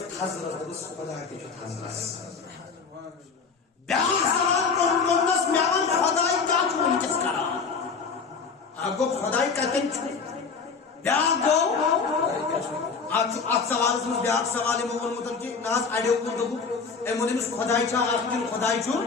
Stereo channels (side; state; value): right; quieter; 5.2 dB